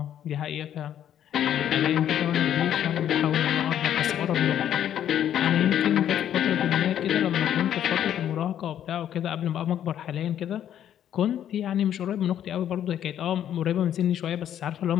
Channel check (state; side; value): quieter; right; 10.4 dB